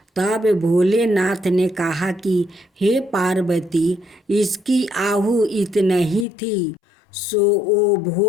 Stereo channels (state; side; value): drops out; right; at 6.2 s